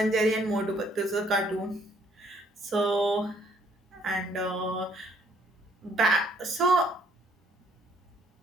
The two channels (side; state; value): both; normal; correlation 0.65